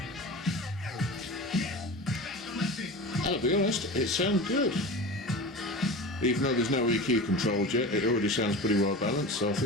I'll be honest, it sounds good. Even though there's no EQ controls yet, it already sounds pretty well balanced, so I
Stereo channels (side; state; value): both; normal; correlation 0.31